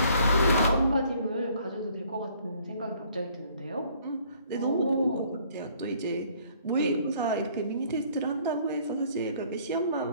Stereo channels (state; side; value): inverted; both; correlation -0.61